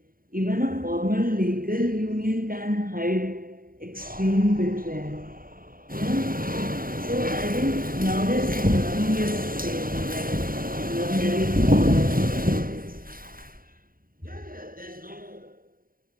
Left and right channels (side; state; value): left; late; 0.41 ms